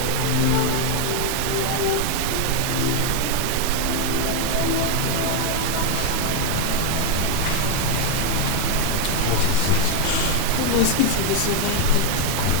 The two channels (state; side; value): different; both; correlation 0.01